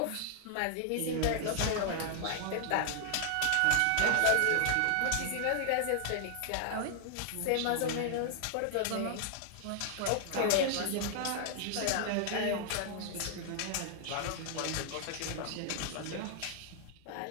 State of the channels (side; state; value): both; different; correlation 0.00